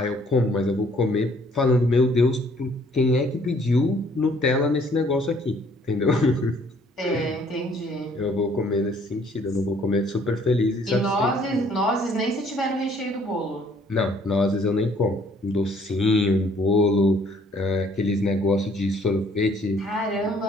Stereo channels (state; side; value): normal; both; correlation 0.61